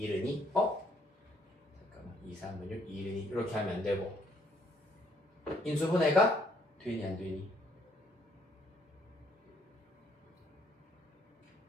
2 잠깐만 2, 3은 6, 2, 1은 2 이렇게 하면 안 되고 인수분해가 되니 안 되니?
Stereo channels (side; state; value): both; normal; correlation 0.68